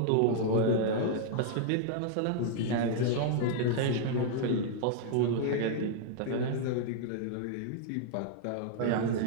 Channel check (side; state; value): both; different; correlation -0.01